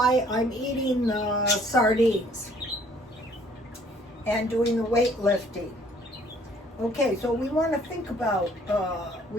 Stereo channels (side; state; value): both; normal; correlation 0.59